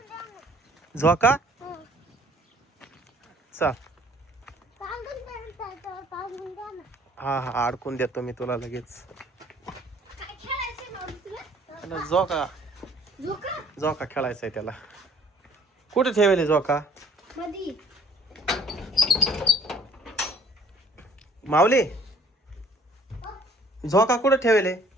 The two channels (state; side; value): normal; both; correlation 0.55